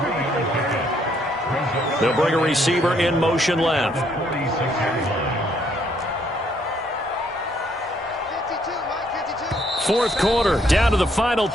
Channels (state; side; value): normal; both; correlation 0.69